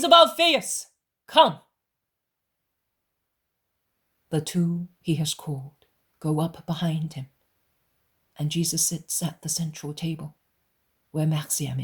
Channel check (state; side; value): identical; both; correlation 1.00